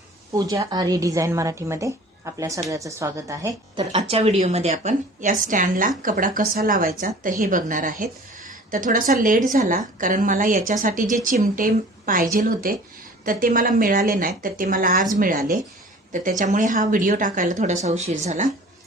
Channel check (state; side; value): normal; both; correlation 0.46